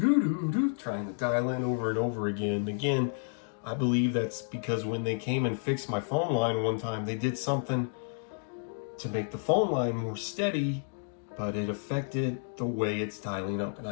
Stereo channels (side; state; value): right; silent; digital silence